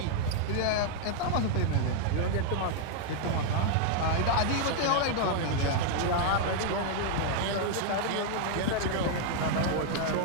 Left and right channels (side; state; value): both; different; correlation 0.00